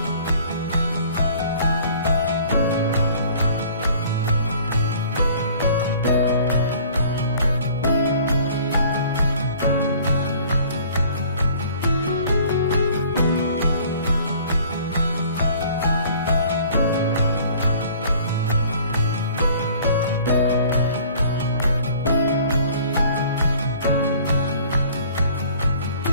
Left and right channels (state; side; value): inverted; both; correlation -0.52